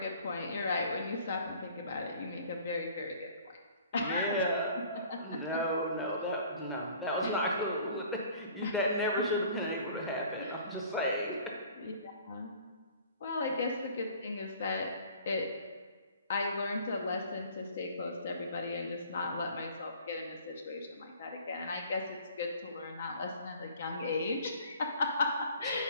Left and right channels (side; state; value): both; inverted; correlation -0.50